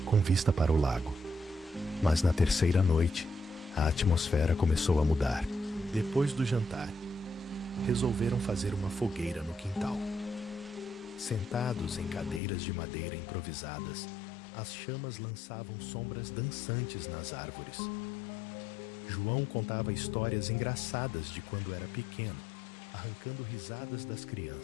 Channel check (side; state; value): right; drops out; at 12.4 s